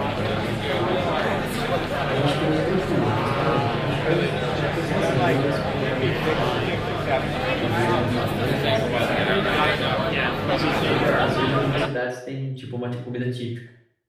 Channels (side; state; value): both; identical; correlation 1.00